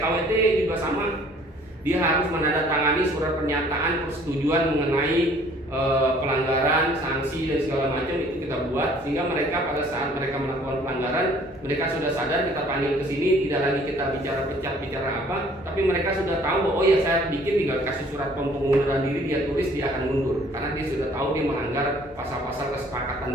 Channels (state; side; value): normal; both; correlation 0.56